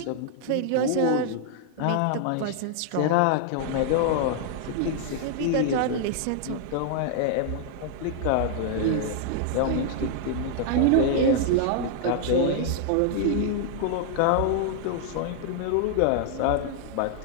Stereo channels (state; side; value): different; both; correlation -0.01